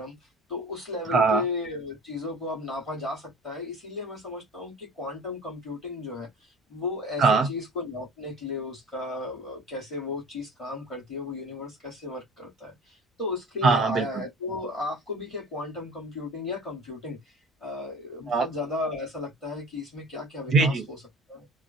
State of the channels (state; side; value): normal; both; correlation 0.43